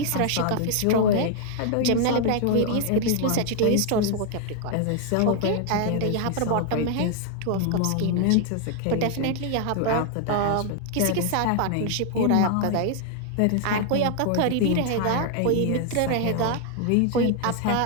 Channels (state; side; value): different; both; correlation 0.00